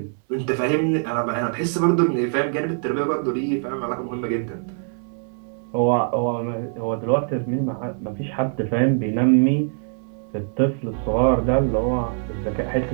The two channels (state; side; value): silent; left; 57 dB below the other